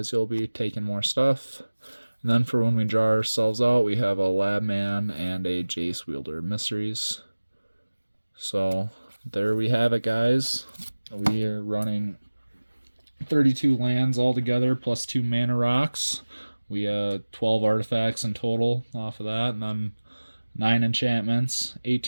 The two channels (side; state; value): both; inverted; correlation -1.00